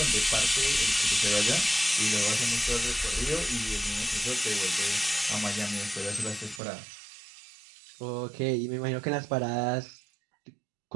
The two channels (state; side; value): drops out; left; at 6.6 s